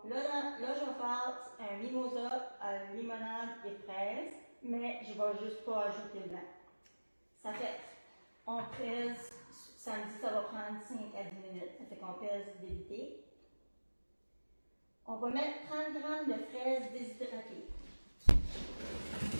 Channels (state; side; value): inverted; both; correlation -1.00